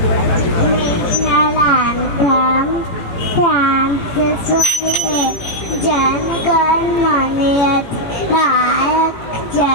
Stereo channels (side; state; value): right; late; 18 ms